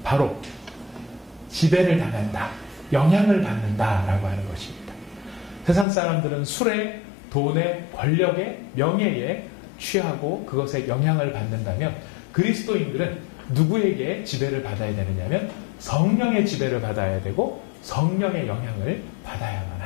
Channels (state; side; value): drops out; right; at 5.9 s